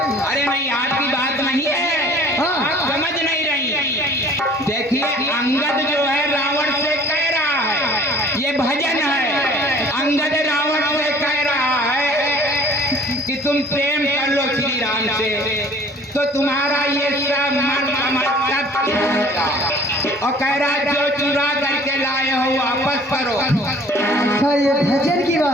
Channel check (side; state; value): both; normal; correlation 0.51